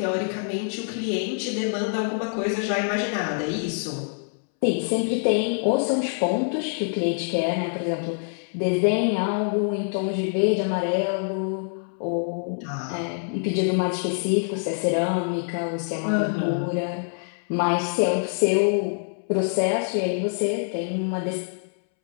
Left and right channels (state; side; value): silent; right; 62 dB below the other